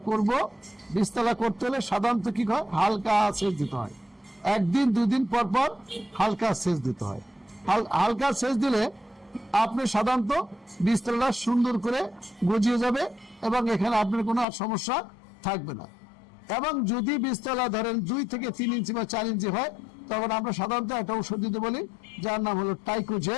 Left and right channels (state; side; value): drops out; right; at 14.5 s